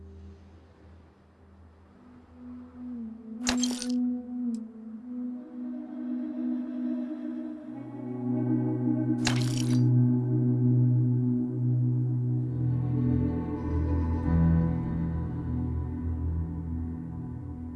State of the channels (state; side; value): identical; both; correlation 1.00